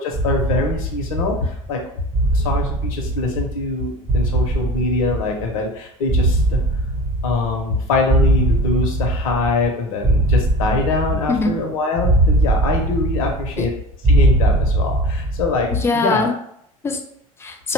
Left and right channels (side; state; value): both; normal; correlation 0.35